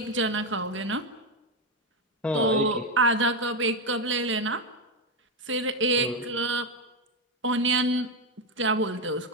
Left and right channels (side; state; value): both; normal; correlation 0.08